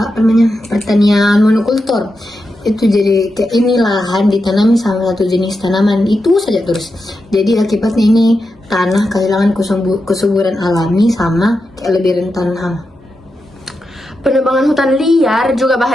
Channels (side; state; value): both; normal; correlation 0.88